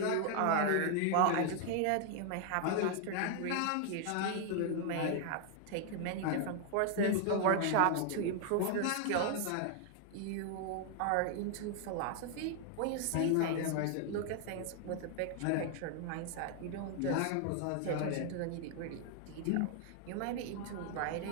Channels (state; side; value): different; both; correlation 0.00